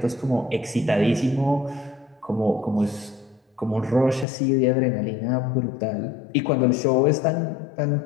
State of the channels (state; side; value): drops out; right; at 4.2 s